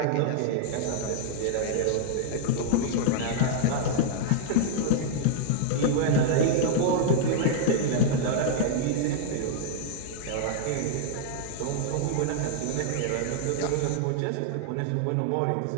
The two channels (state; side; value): different; both; correlation -0.01